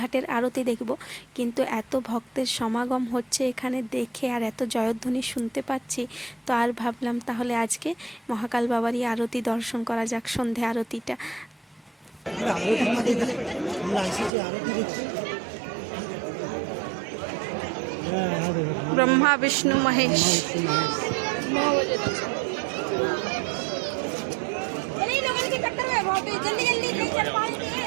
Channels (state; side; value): drops out; left; at 14.3 s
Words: আরতি দেখব, কিন্তু এত ভক্তের সমাগম হচ্ছে এখানে দেখে, আর এত জয়ধ্বনি শুনতে পাচ্ছি, তো আর ভাবলাম তাহলে আজকে মহাকাল বাবারই আরতি দর্শন করা যাক, সন্ধে আরতিটা। ब्रह्मा विष्णु महेश।